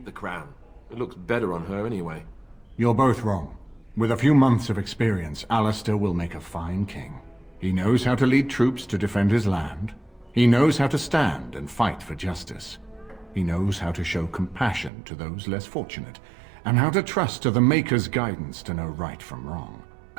the crown. It looks better on her anyway. You're both wrong. With a few months of experience, Alistair will make a fine king. He knows how to lead troops to defend his land. He knows how to stand and fight for justice. He knows how to show compassion to those less fortunate, and how to trust to the Maker's guidance to know right from wrong.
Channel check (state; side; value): drops out; left; at 14.9 s